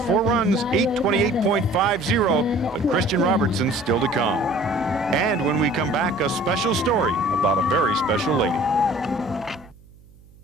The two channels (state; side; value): noise; right; hum, 26 dB below the sound